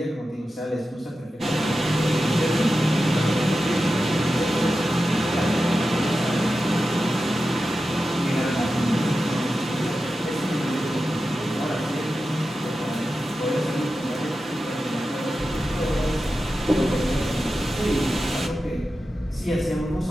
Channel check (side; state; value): both; normal; correlation 0.92